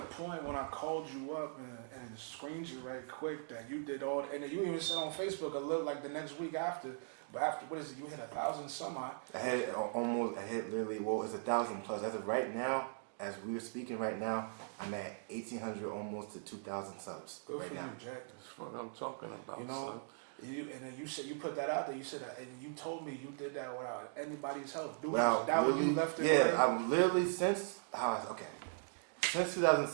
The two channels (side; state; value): left; silent; digital silence